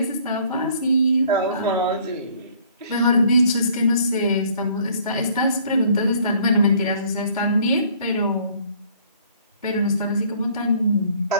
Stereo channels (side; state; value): both; inverted; correlation -0.58